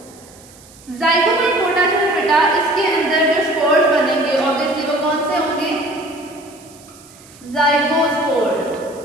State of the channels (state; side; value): noise; right; hiss, 24 dB below the sound